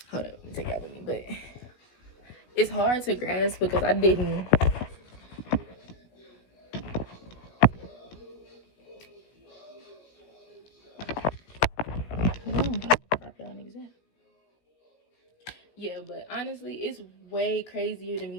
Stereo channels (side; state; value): right; late; 17 ms